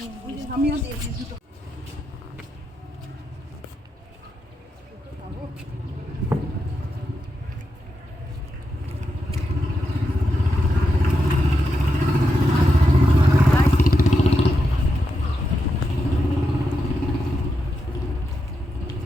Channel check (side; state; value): both; normal; correlation 0.86